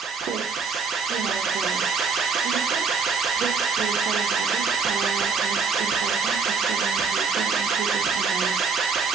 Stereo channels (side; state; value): left; quieter; 5.1 dB